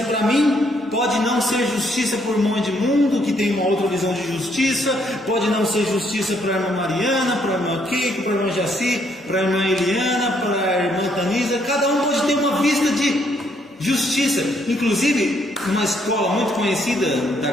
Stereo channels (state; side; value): normal; both; correlation 0.70